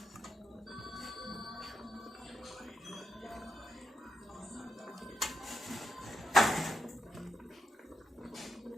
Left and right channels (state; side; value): normal; both; correlation 0.83